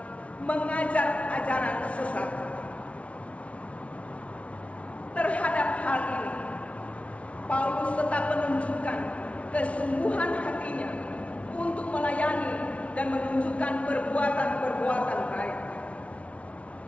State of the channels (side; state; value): right; late; 0.063 ms